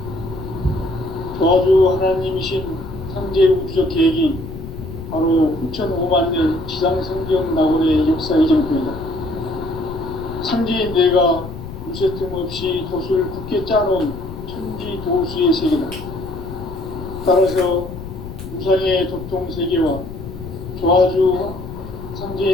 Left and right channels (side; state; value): left; noise; rumble, 11 dB below the sound